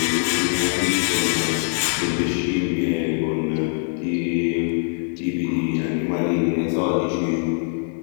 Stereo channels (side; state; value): right; silent; 64 dB below the other